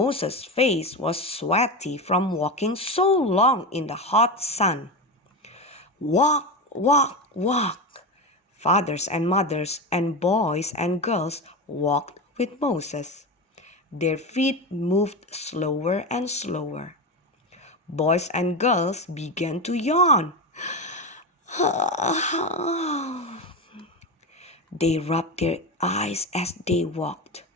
face was sweaty from walking so long in the hot sun. Walk, walk, walk. Fathers and mothers and boys and girls walked with Moses. Their feet moved slower and slower. Boys and girls began to yawn. They rubbed their eyes as they walked.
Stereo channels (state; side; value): normal; both; correlation 0.19